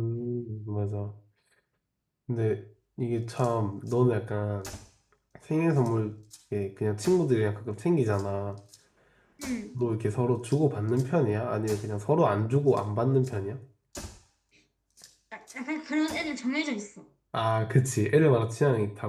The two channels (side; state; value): both; identical; correlation 1.00